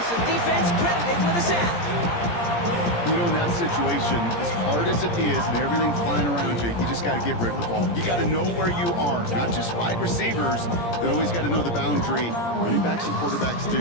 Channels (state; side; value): late; right; 17 ms